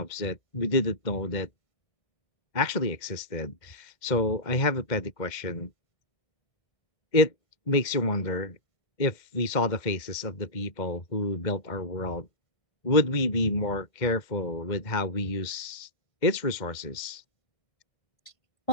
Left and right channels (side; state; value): right; late; 2.1 ms